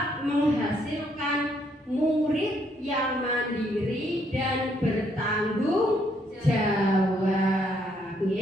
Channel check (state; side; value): normal; both; correlation 0.71